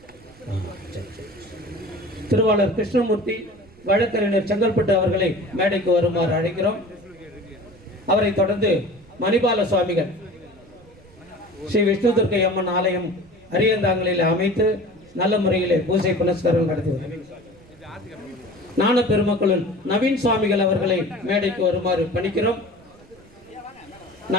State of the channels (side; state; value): right; noise; rumble, 26 dB below the sound